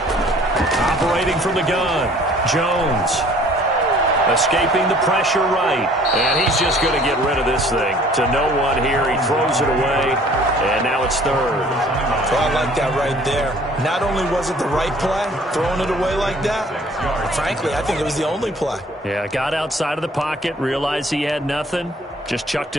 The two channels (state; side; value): normal; both; correlation 0.54